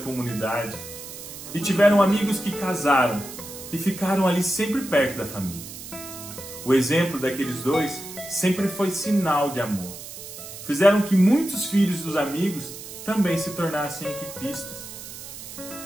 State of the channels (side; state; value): right; noise; hiss, 12 dB below the sound